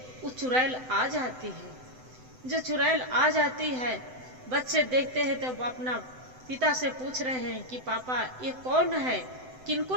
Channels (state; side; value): late; left; 7.9 ms